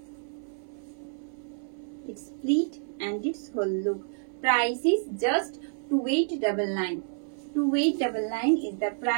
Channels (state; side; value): silent; left; 58 dB below the other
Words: Its pleat and its whole look. Price is just 2899. 2899 is the